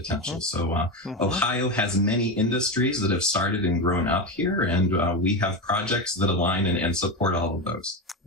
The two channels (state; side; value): normal; both; correlation 0.17